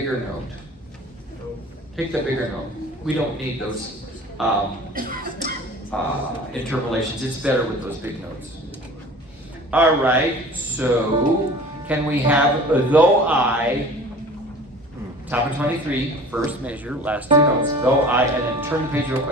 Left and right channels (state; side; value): normal; both; correlation 0.43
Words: note. Take the bigger note. We don't need those interpolations. It's better with those big notes. All right, so can we have though I, top of 23, first measure, last two notes, though I, and then turn the page real